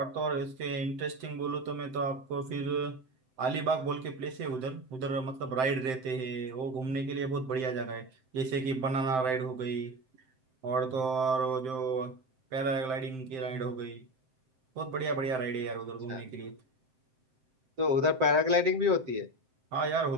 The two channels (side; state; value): left; late; 7.7 ms